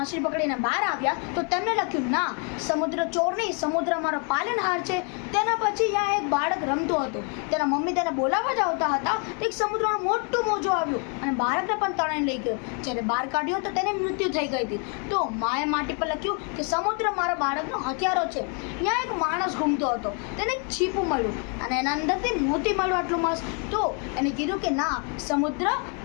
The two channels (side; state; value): right; quieter; 38.6 dB